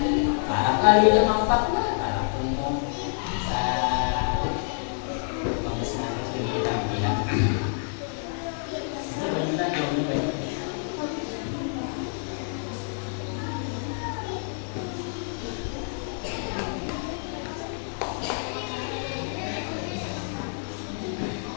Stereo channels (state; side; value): silent; right; 60 dB below the other